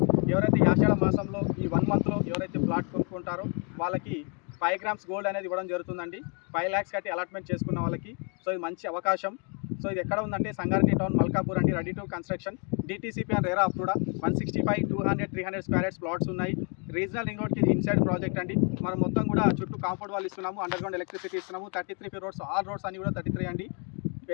ఎవరైతే ఈ ఆషాఢ మాసంలో ఈ 1 మంత్లో ఎవరైతే ప్లాట్ కొనుక్కుంటారో వాళ్ళకి 5 గ్రామ్స్ గోల్డ్ అనేది ఇవ్వడం జరుగుతుందండి. 5 lakhs కట్టి అలాట్మెంట్ చేసుకున్న వాళ్ళకి. సో ఇది మంచి అవకాశం. సో ఇది ఎక్కడ ఉందంటే సంగారెడ్డి టౌన్ మల్కాపూర్ అండి. Ready to construction, DTCP and RERA approved. 165, 200, 300 square yards plots ఉన్నాయి. రీజనల్ రింగ్ రోడ్కి ఇది ఇన్సైడ్ ప్రాజెక్ట్ అండి. మనం మొత్తం కూడా చుట్టూ కాంపౌండ్ వాళ్ళు ఇస్తున్నాము, అండర్ గ్రౌండ్ ఎలక్ట్రిసిటీ ఇస్తున్నాము. 33 రోడ్స్, ఆల్ రోడ్స్ అన్ని కూడా 33 అండి.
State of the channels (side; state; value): right; quieter; 37.2 dB